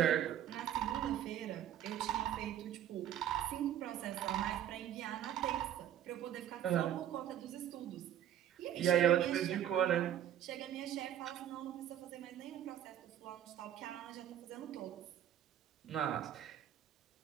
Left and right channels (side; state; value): left; quieter; 10.9 dB